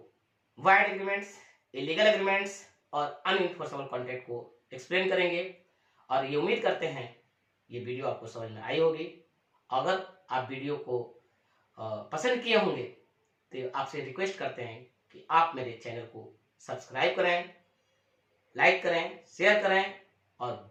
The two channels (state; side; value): identical; both; correlation 1.00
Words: वाइड एग्रीमेंट्स, इलीगल एग्रीमेंट्स और अनइन्फोर्सेबल कॉन्ट्रैक्ट को एक्सप्लेन करेंगे। और ये उम्मीद करते हैं ये वीडियो आपको समझ में आई होगी। अगर आप वीडियो को पसंद किए होंगे तो आपसे रिक्वेस्ट करते हैं कि आप मेरे चैनल को सब्सक्राइब करें, लाइक करें, शेयर करें और